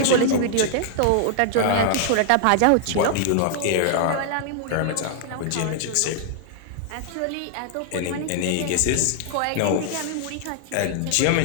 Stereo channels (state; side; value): different; both; correlation 0.00